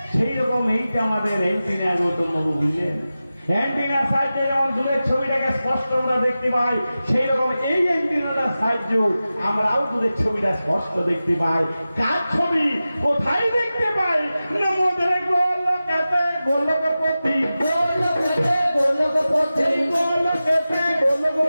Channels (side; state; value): both; inverted; correlation -0.95